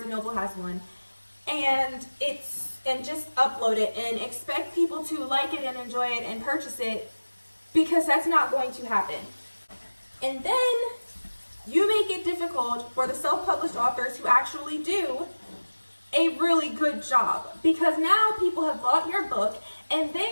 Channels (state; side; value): inverted; both; correlation -1.00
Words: & Noble has one, and just upload it and expect people to like it and enjoy it and purchase it, because that's not going to happen. And then you make it difficult for the self-published authors who actually do a really good job, because now people have bought your book and